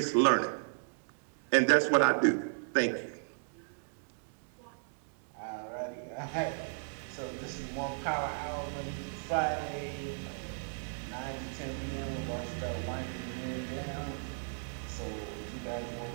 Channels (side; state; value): left; silent; digital silence